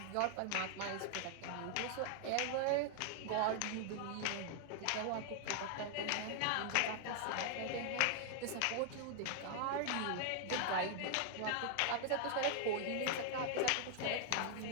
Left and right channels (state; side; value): different; both; correlation 0.00